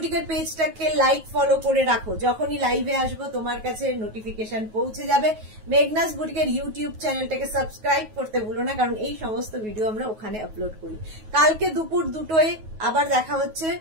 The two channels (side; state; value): left; late; 9.3 ms